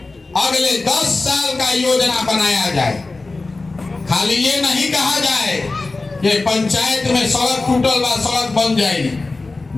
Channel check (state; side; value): quieter; right; 3.5 dB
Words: अगले 10 साल का योजना बनाया जाए। खाली ये नहीं कहा जाए कि पंचायत में सड़क टूटल बा सड़क बन जाई,